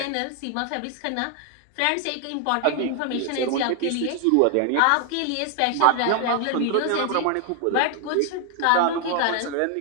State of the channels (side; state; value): both; different; correlation 0.00